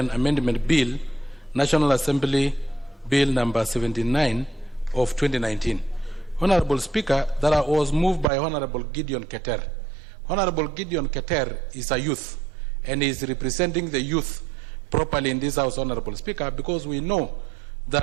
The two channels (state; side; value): drops out; left; at 8.2 s